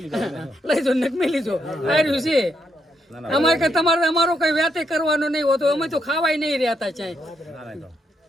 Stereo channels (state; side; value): normal; both; correlation 0.78